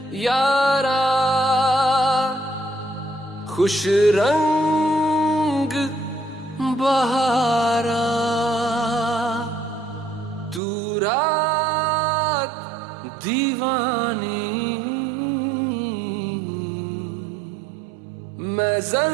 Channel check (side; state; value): left; drops out; at 10.6 s